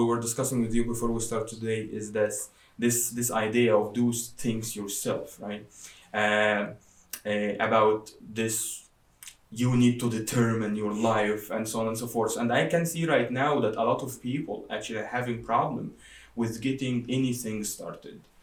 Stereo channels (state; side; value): identical; both; correlation 1.00